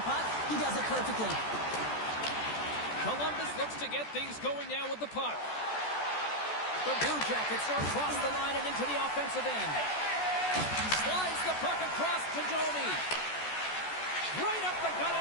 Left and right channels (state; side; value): late; right; 14 ms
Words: puck. He does it perfectly. Columbus looks to get things going now with the puck. The Blue Jackets are across the line and into the offensive end. Slides the puck across to Domi. Right up the gut